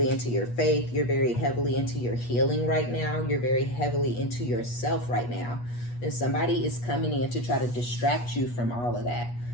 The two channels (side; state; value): right; late; 8.3 ms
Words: into your faith. You're very heavily into your healing right now. You're very heavily into yourself right now. And somebody is coming in to try to distract you from all of that.